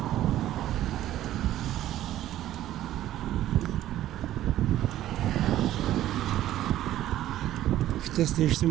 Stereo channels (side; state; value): left; quieter; 13.3 dB